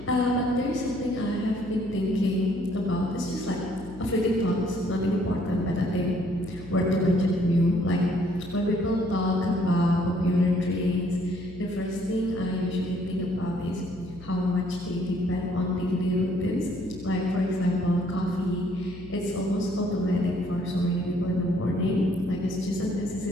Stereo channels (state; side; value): noise; left; hum, 16 dB below the sound